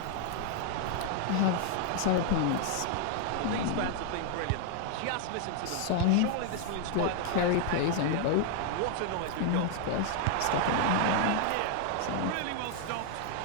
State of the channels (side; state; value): both; different; correlation 0.00